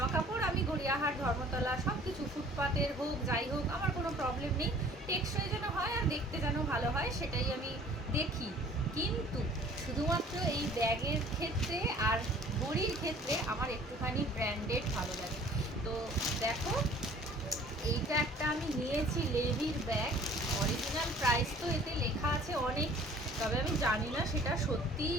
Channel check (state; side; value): normal; both; correlation 0.52